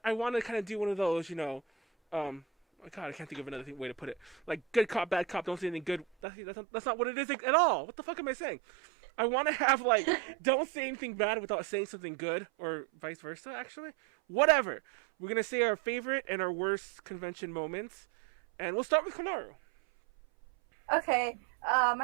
kind of do one of those, oh god, I can't think of another way to put it. Like good cop, bad cop, don't say anything good. That's not what it is at all. What the fuck am I saying? I want to have, like, don't say anything bad without saying something good, or vice versa, actually. Whatever. We're going to say our favorite and our worst convention moments. And we'll start with Konaru. Okay.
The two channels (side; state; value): left; drops out; at 6.1 s